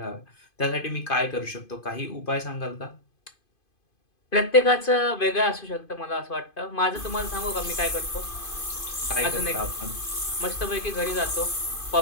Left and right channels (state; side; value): late; right; 2.5 ms